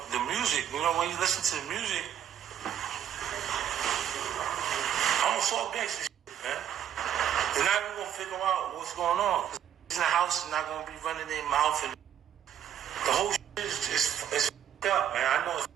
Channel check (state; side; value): quieter; left; 10.0 dB